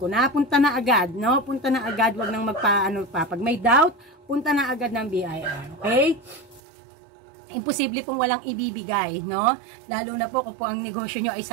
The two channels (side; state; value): left; drops out; at 6.6 s